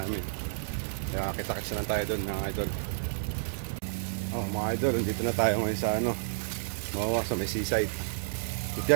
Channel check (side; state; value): left; silent; digital silence